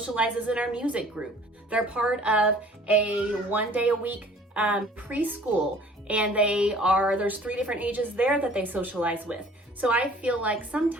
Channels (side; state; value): both; normal; correlation 0.51